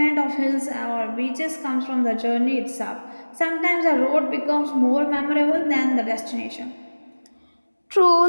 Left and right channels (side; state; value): both; inverted; correlation -1.00